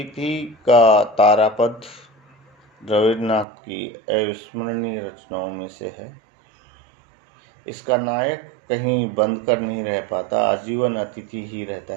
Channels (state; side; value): drops out; left; at 3.5 s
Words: का तारापद रविन्द्रनाथ की अविस्मरणीय रचनाओं में से है। इसका नायक कहीं बंद कर नहीं रह पाता, आजीवन अतिथि ही रहता